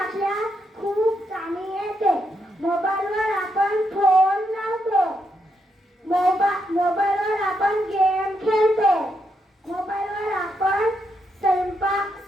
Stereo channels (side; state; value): both; normal; correlation 0.80